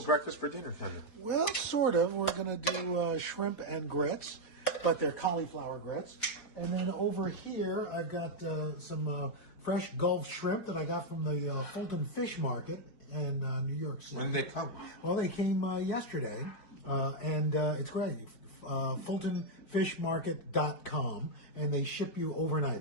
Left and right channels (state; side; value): late; right; 4.7 ms